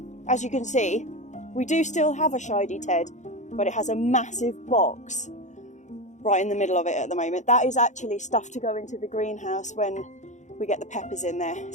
As you can see, We do still have a Shady Ted, but it has a massive box right in the middle of it at the moment. That is actually stuff to go into the greenhouse when we get the peppers in there,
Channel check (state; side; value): late; right; 0.35 ms